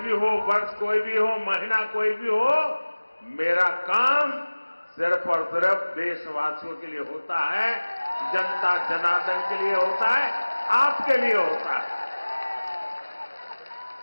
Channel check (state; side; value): inverted; both; correlation -1.00